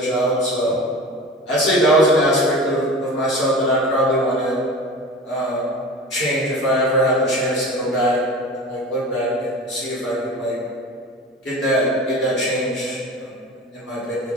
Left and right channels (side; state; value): both; normal; correlation 0.34